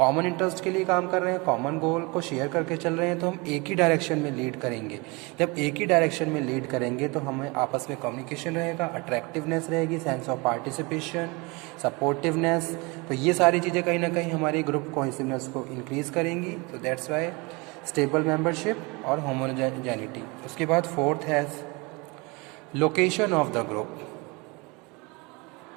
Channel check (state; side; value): quieter; left; 27.1 dB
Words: interest के लिए काम कर रहे हैं, common goal को share करके चल रहे हैं, तो हम एक ही डायरेक्शन में लीड करेंगे। जब एक ही डायरेक्शन में लीड करेंगे तो हमें आपस में कम्युनिकेशन रहेगा, अट्रैक्टिवनेस रहेगी, सेंस ऑफ पार्टिसिपेशन, सपोर्टिवनेस। तो ये सारी चीज़ें कहीं ना कहीं हमारी ग्रुप कोहेसिवनेस को इंक्रीज करेंगी। तो दैट्स वाई स्टेबल मेंबरशिप और होमोजेनिटी। उसके बाद फोर्थ है location of the group.